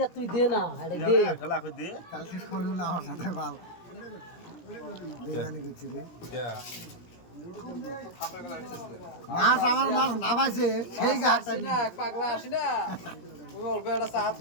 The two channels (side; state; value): right; late; 17 ms